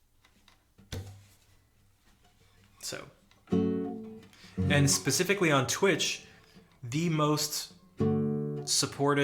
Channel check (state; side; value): identical; both; correlation 1.00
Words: So, and specifically on Twitch, the most